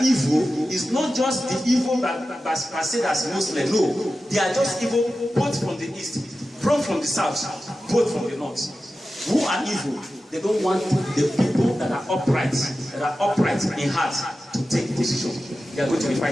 is not just the evil that per se as Muslim. No, they are just evil both from the east, from the south, both from the north. Who are evil? They don't want the people that are upright in heart to take decision. They are going to be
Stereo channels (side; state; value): both; normal; correlation 0.93